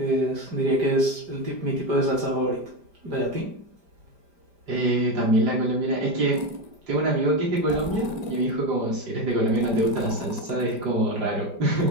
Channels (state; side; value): late; left; 5.0 ms